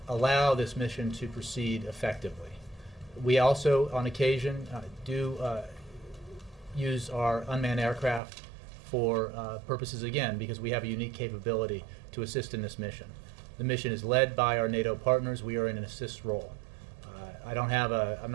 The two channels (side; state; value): left; drops out; at 8.2 s